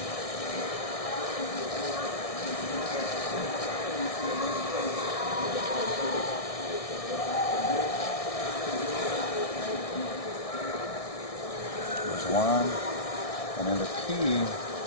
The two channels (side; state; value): right; late; 1.6 ms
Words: One, and then the P, you